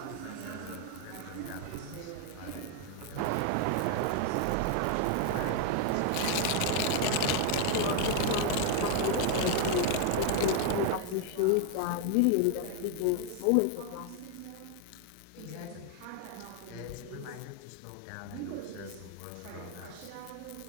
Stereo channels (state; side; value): different; both; correlation 0.01